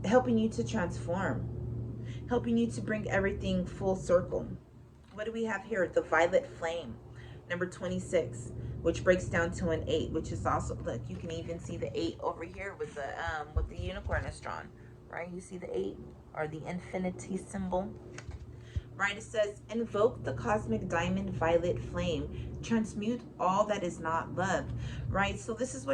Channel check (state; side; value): identical; both; correlation 1.00